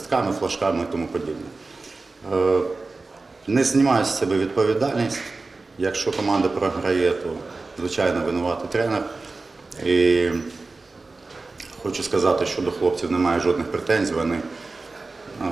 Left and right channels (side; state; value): left; quieter; 3.6 dB